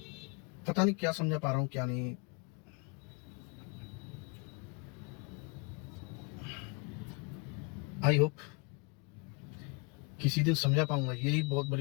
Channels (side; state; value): right; quieter; 31.1 dB